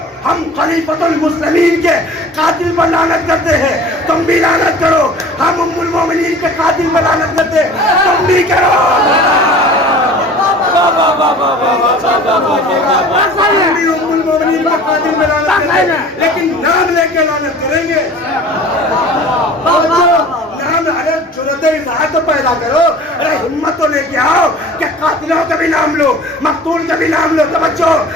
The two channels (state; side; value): normal; both; correlation 0.43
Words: ہم خلیفۃ المسلمین کے قاتل پر لعنت کرتے ہیں، تم بھی لعنت کرو، ہم ام المومنین کے قاتل پر لعنت کرتے ہیں، تم بھی کرو، ہم بھی ام المومنین کے قاتل پر لعنت کرتے ہیں، لیکن نام لے کے لعنت کریں گے، نام حضرت جرأت اظہار تو پیدا کرو، ارے ہمت تو لے کے آؤ کہ قاتلوں کا بھی نام لو، مقتول کا بھی نام لو، توجہ،